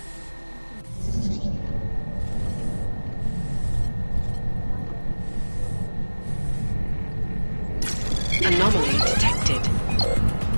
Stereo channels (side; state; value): both; inverted; correlation -1.00